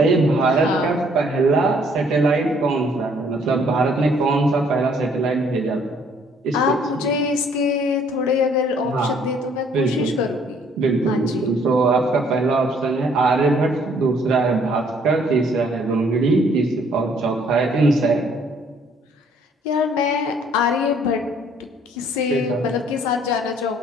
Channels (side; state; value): both; normal; correlation 0.62